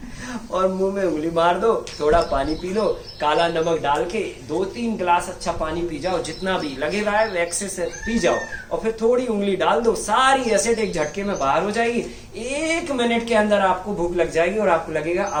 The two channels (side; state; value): both; identical; correlation 1.00